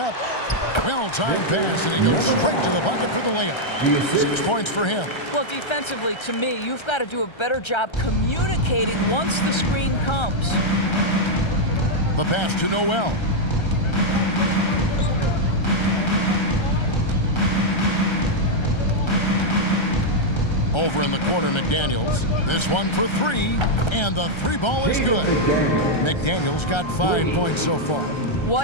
Well-timed pass, and he goes straight to the bucket for the layup. 6 points for him. Well, defensively, to me, you've got to do a better job communicating once the screen comes. The pass to Noel. Over in the corner, McDaniels. This one for three, and the three ball is good. McDaniels got 5 points so far.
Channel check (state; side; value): late; right; 1.3 ms